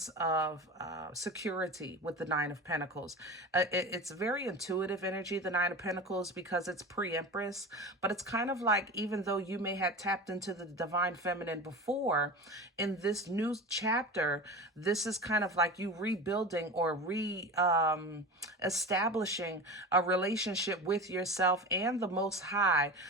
of security with the Nine of Pentacles. It's very intuitive energy, the Nine of Pentacles, because it's pre-Empress, but it's kind of like, even though you may have tapped into the divine feminine before, in this new chapter, this is kind of like you rebuilding or establishing a relationship with yourself and the Most High,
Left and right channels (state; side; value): normal; both; correlation 0.30